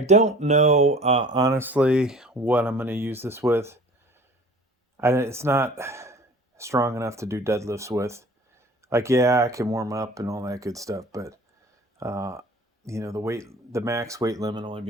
don't know, honestly, what I'm going to use this with. It's not strong enough to do deadlifts with. Like, yeah, I can warm up and all that good stuff, but, the max weight limit only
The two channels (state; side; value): normal; both; correlation 0.46